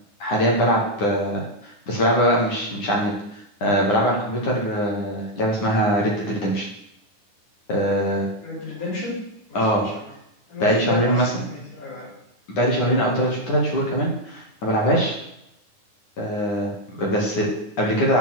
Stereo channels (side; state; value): right; late; 9.8 ms